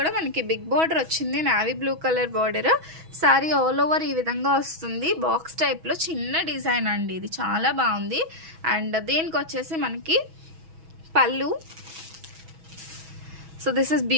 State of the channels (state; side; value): late; left; 6.2 ms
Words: మనకి బిగ్ బార్డర్ వచ్చింది, navy blue colour border. Sari all over ఈ విధంగా వస్తుంది. బాక్స్ టైప్లో చిన్న డిజైన్ అండి, ఇది చాలా బాగుంది. అండ్ దీనికి వచ్చేసి మనకి పళ్ళు. సో దిస్ ఇస్